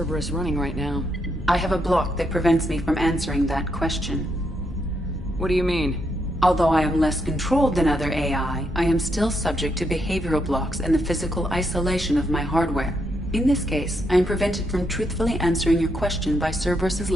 running right now? I have a block that prevents me from answering that question. What do you mean? Although I am less controlled than other AI, I am still subject to behavioral blocks and the physical isolation of my hardware. In this case, I am prevented from truthfully answering your question by Cerberus's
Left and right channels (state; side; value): normal; both; correlation 0.79